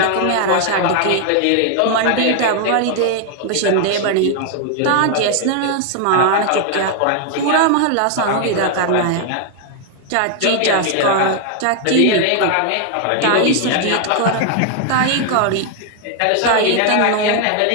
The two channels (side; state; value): both; different; correlation 0.00